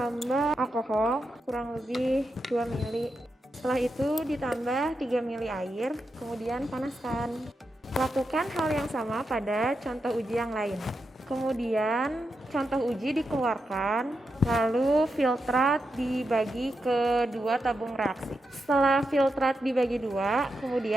alkohol kurang lebih 2 ml. Setelah itu ditambah 3 ml air, kemudian panaskan. Lakukan hal yang sama pada contoh uji yang lain. Kemudian contoh uji dikeluarkan, lalu filtrat dibagi ke 2 tabung reaksi. Setelah filtrat dibagi 2,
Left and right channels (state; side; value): normal; both; correlation 0.87